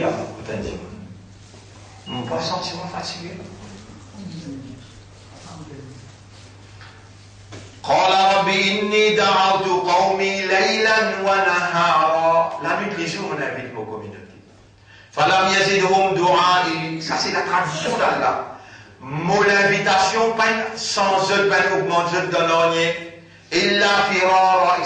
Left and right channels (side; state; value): both; identical; correlation 1.00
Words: peut dire. Mon bois sentiment fatigué. قال رب إني دعوت قومي ليلا ونهارا. La nuit, les jours, on invite nos communautés. فلم يزدهم دعائي. Ça, c'est la tradition d'Allah. Mon invitation, sans eux, augmente, je donne rien. إلا فرارا,